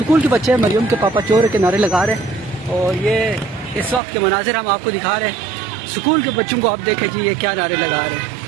के बच्चे मरियम के पापा चोर के नारे लगा रहे हैं और ये इस वक्त के मनाजिर हम आपको दिखा रहे हैं। स्कूल के बच्चों को आप देखें जी ये क्या नारे लगा रहे हैं।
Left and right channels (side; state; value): left; drops out; at 4.0 s